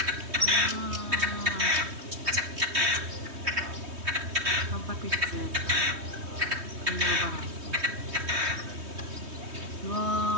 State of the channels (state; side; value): late; left; 3.2 ms